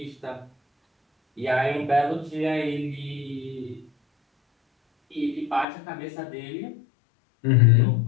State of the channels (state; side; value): drops out; right; at 5.7 s